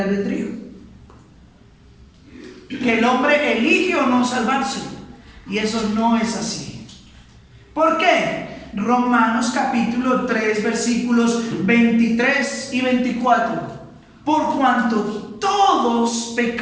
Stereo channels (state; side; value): identical; both; correlation 1.00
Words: Que el hombre elige o no salvarse. Y eso no es así. ¿Por qué? Romanos capítulo 3 versículos 23 y 24. Por cuanto todos